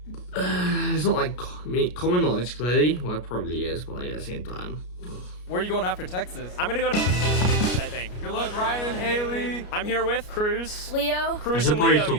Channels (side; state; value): right; late; 33 ms